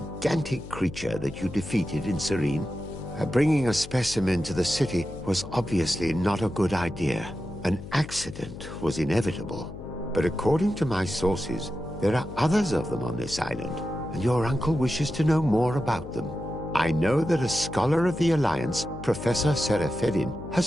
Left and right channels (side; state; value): left; noise; hum, 13 dB below the sound